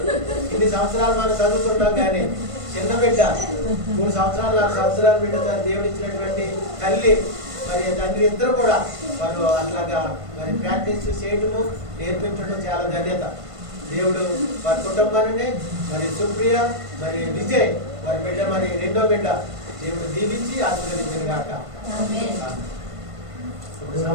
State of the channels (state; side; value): late; left; 1.5 ms